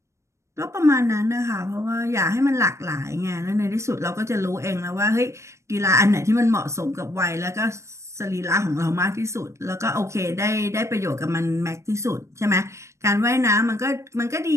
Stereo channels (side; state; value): left; late; 0.14 ms